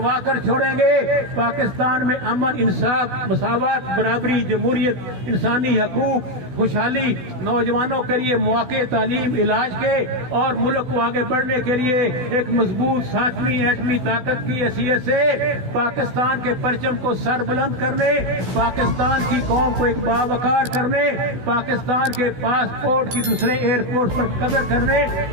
کر چھوڑیں گے. پاکستان میں امن، انصاف، مساوات، برابری، جمہوریت، انسانی حقوق، خوشحالی، نوجوانوں کے لیے مواقع، تعلیم، علاج کے اور ملک کو آگے بڑھنے کے لیے ایک مضبوط 7ویں ایٹمی طاقت کی حیثیت سے پاکستان کے پرچم کو سر بلند کرنے، پاکستان کی قوم کو ایک باوقار کرنے، پاکستان کے پاسپورٹ کی دوسرے ایئرپورٹ پر قدر کرنے،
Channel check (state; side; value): late; left; 16 ms